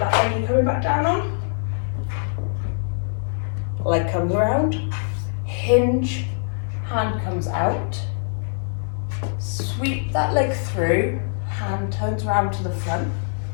leg you're coming back down on. Leg comes around, hinge, hand comes out. Sweep that leg through, hand turns around to the front,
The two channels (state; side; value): silent; right; digital silence